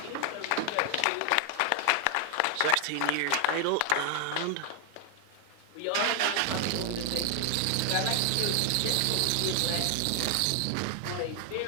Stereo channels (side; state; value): both; different; correlation 0.00